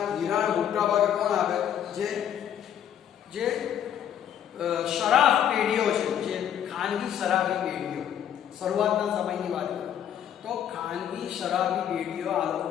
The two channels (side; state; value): right; quieter; 9.9 dB